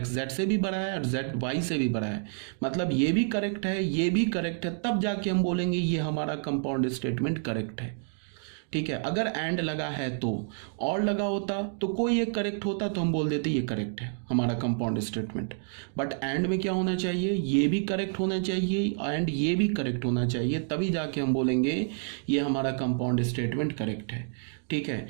जेड से भी बड़ा है और जेड वाई से भी बड़ा है, मतलब ये भी करेक्ट है, ये भी करेक्ट है, तब जाके हम बोलेंगे ये हमारा कंपाउंड स्टेटमेंट करेक्ट है। ठीक है, अगर एंड लगा है तो, और लगा होता तो कोई एक करेक्ट होता तो हम बोल देते ये करेक्ट है हमारा कंपाउंड स्टेटमेंट। बट एंड में क्या होना चाहिए, ये भी करेक्ट होना चाहिए एंड ये भी करेक्ट होना चाहिए, तभी जाके हम बोलेंगे ये हमारा कंपाउंड स्टेटमेंट करेक्ट है। ठीक है,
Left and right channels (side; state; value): left; silent; digital silence